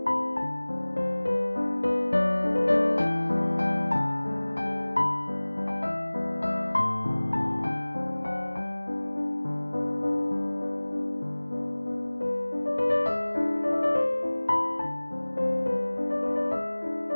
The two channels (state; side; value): inverted; both; correlation -1.00